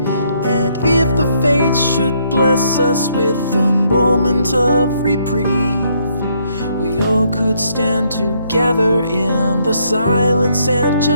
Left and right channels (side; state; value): both; inverted; correlation -0.71